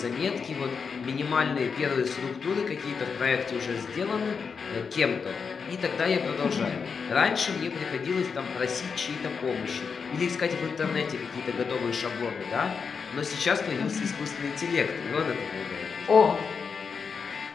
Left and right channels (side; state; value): right; quieter; 5.7 dB